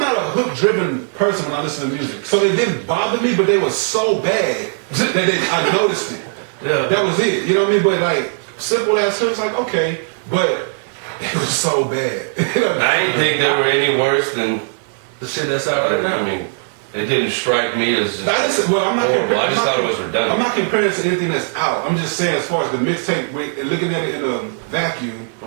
not a hook driven person when I listen to music. So it didn't bother me, but they were so bad that I noticed it. Yeah. That was it. You know what I mean? But like simple ass hooks, like okay, but it was so bad. I didn't think they were any worse than The shit that's out right now. I mean, it didn't strike me as just I'm not horrible. I comparing. just thought it was I'm redundant. not comparing it to anything that's out. I'm just saying as far as the mixtape, looking at it in a vacuum,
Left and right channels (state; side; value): silent; left; digital silence